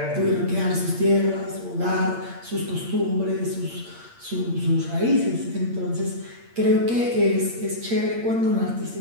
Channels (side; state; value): left; late; 8.6 ms